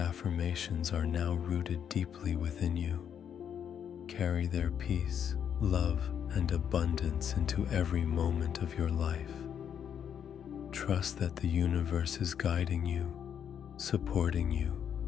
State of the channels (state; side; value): quieter; right; 8.5 dB